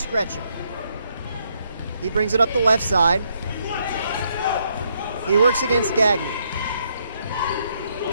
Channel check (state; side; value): inverted; both; correlation -0.74